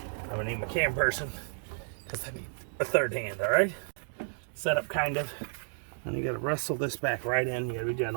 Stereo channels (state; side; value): silent; left; 57 dB below the other